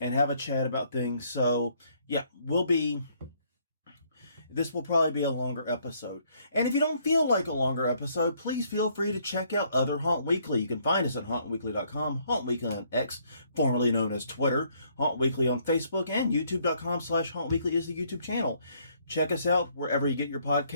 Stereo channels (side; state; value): both; inverted; correlation -0.67